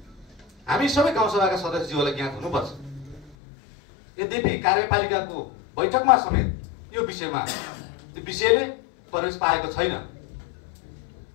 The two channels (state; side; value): drops out; right; at 3.4 s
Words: हामी सबै गाउँसभाका सदस्यज्यूहरूलाई ज्ञात हुनुपर्छ। यद्यपि कार्यपालिकाको बैठकमा समेत यो विषयमा त्यो विषयले प्रवेश पाएको छैन।